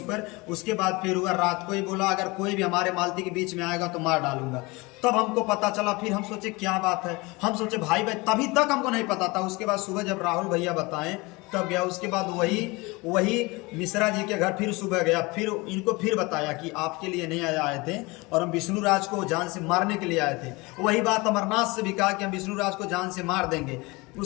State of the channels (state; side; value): quieter; right; 24.5 dB